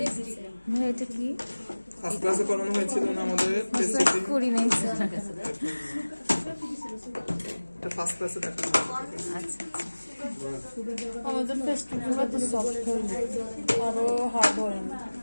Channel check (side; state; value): both; inverted; correlation -1.00